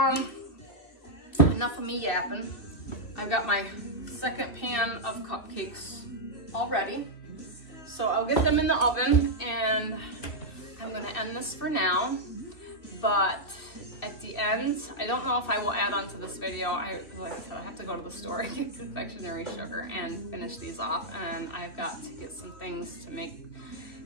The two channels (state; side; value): late; right; 2.6 ms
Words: enough of me yapping. I've got my second pan of cupcakes all ready. So I'll get them in the oven, and I'm gonna end this for now. But at the end, I don't know if I will add on to this video. Like I said, I have to go to the store and get confectionery sugar and finish these off, and I've got to get some things to make.